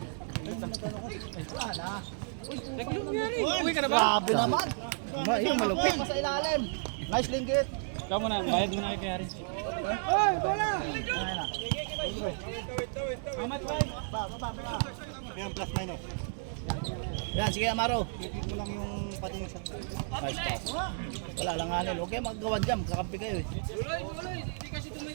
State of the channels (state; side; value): silent; left; digital silence